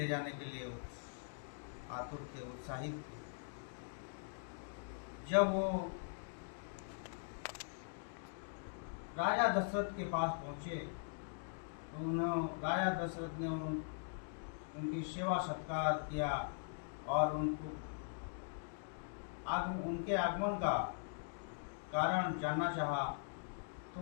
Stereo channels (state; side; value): silent; right; digital silence